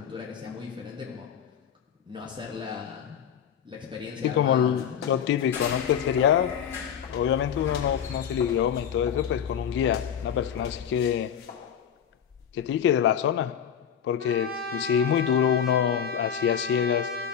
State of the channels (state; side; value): quieter; right; 8.5 dB